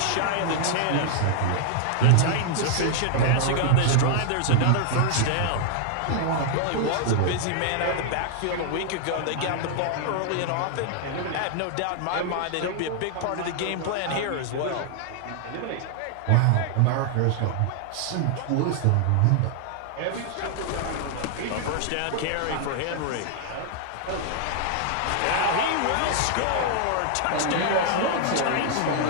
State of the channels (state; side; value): different; both; correlation 0.00